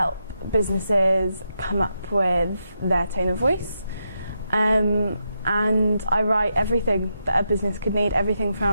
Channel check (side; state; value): both; inverted; correlation -0.84